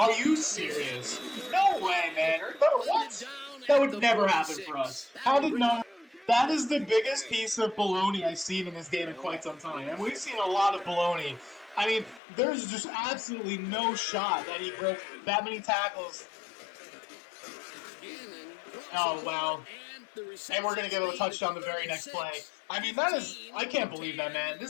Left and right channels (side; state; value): right; drops out; at 12.2 s